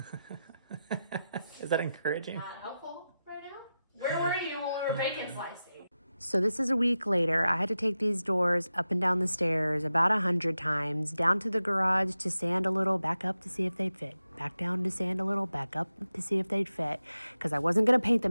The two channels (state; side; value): inverted; both; correlation -0.92